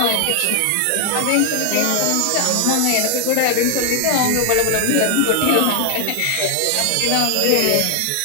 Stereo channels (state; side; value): different; both; correlation 0.00